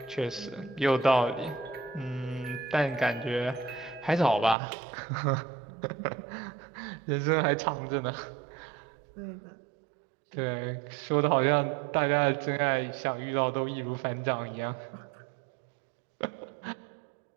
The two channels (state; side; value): drops out; left; at 4.5 s